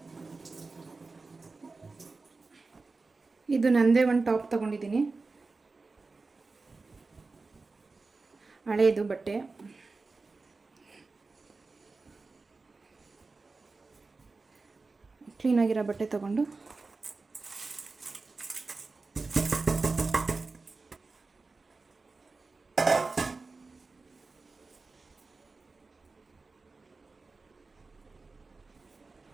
ಇದು ನಂದೇ 1 ಟಾಪ್ ತೊಗೊಂಡಿದ್ದೀನಿ, ಹಳೇದು ಬಟ್ಟೆ. ಕ್ಲೀನಾಗಿರೋ ಬಟ್ಟೆ ತೊಗೊಂಡು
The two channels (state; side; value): quieter; left; 3.9 dB